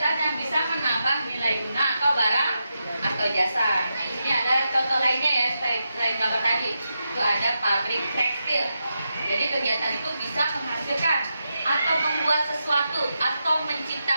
yang bisa menambah nilai guna atau barang atau jasa. Nah di sini ada contoh lainnya ya selain gambar tadi. Itu ada pabrik tekstil. Jadi kegiatan itu bisa menghasilkan atau membuat sesuatu atau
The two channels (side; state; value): both; inverted; correlation -0.87